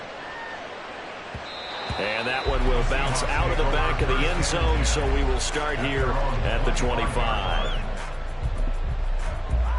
And that one will bounce out of the back of the end zone, so we will start here at the 25.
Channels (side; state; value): both; identical; correlation 1.00